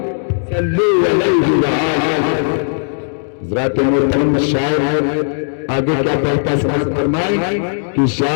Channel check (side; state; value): right; silent; digital silence